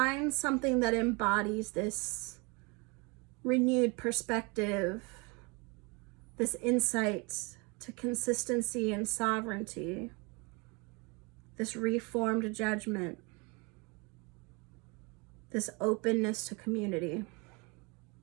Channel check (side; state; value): left; quieter; 29.3 dB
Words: something that embodies this renewed perspective, this insight to consistency and sovereignty, this reformed judgment, this openness to community.